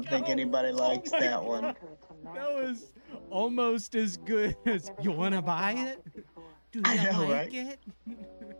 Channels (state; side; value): inverted; both; correlation -1.00